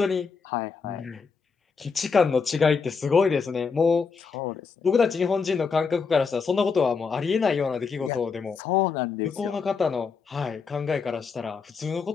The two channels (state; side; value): quieter; right; 5.3 dB